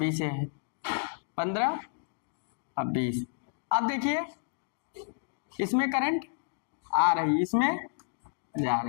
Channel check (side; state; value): right; silent; digital silence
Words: है, 15 अब 20। अब देखिए इसमें करंट आ रही, इसमें जा